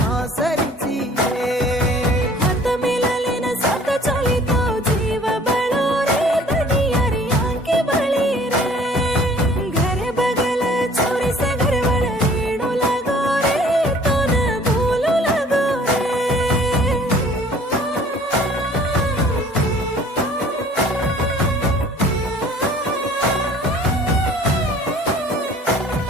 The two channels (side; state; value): both; normal; correlation 0.53